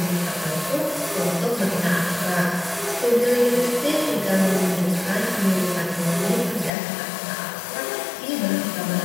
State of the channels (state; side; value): drops out; right; at 6.7 s